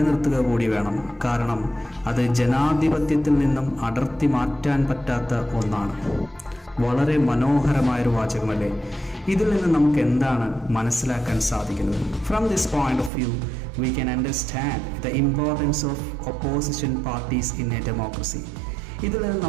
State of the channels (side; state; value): left; drops out; at 13.1 s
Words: കൂടി വേണം. കാരണം അത് ജനാധിപത്യത്തിൽ നിന്നും അടർത്തി മാറ്റാൻ പറ്റാത്ത ഒന്നാണ്. വളരെ മനോഹരമായൊരു വാചകമല്ലേ? ഇതിൽ നിന്ന് നമുക്ക് എന്താണ് മനസ്സിലാക്കാൻ സാധിക്കുന്നത്? From this point of view we can understand the importance of opposition parties in a democracy. ഇതിൽ നിന്ന്